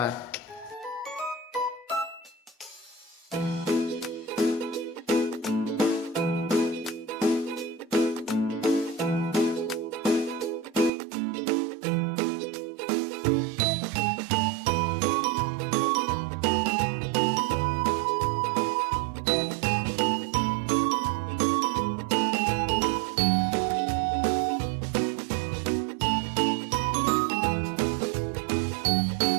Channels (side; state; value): left; drops out; at 10.9 s